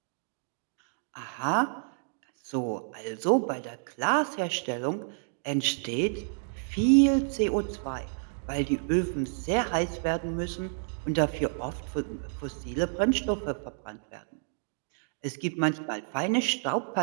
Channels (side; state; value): left; silent; digital silence